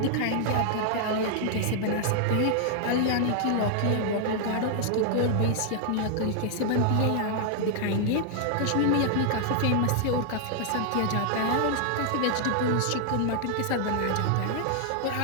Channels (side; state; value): both; different; correlation 0.00